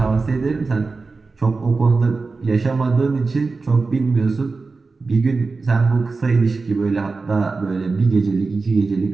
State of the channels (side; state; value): left; quieter; 4.0 dB